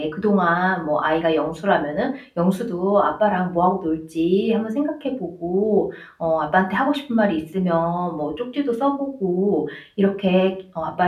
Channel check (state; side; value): identical; both; correlation 1.00